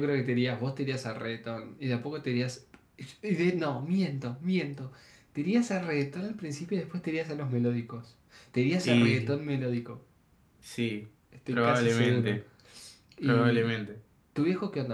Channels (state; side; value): identical; both; correlation 1.00